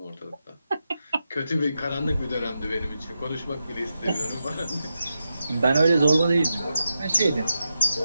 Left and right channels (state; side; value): inverted; both; correlation -0.88